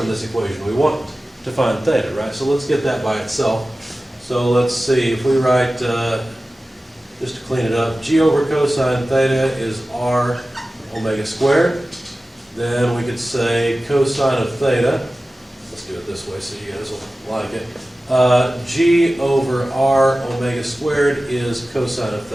this equation? We want to find theta, right? So let's get that by itself. So let's see, if we write, just to clean it up, g over cosine theta is r omega squared. Then we could say cosine of theta, let's do it this way so you guys will like it. G over r omega squared is cosine of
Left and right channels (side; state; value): both; normal; correlation 0.96